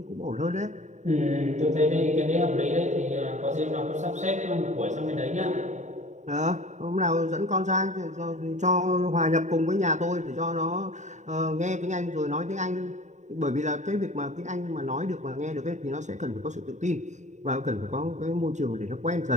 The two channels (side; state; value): left; late; 0.34 ms